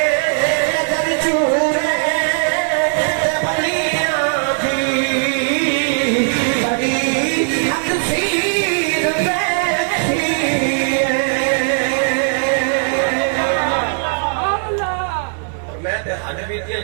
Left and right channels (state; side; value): silent; left; 67 dB below the other